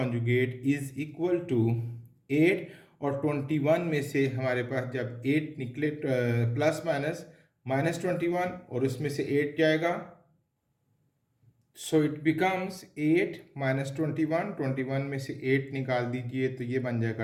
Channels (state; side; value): identical; both; correlation 1.00